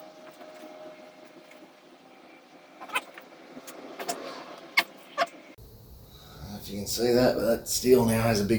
If you can see that, but that steel now has a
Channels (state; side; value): identical; both; correlation 1.00